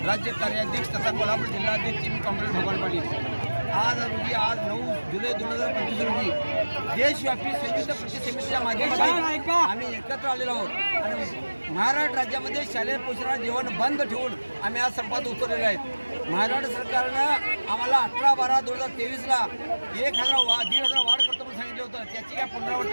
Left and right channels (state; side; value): inverted; both; correlation -1.00